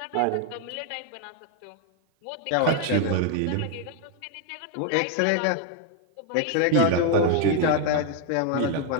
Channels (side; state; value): both; different; correlation 0.00